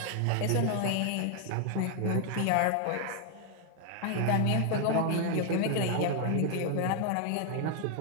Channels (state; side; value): different; both; correlation 0.00